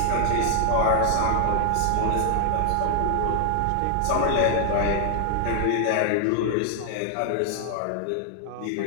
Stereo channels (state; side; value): different; both; correlation 0.00